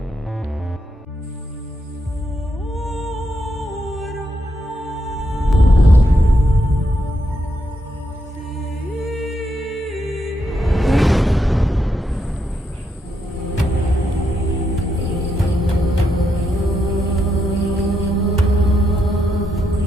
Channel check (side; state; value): both; normal; correlation 0.81